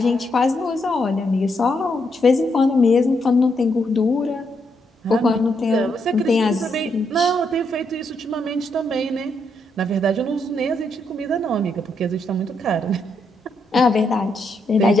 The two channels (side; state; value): both; normal; correlation 0.78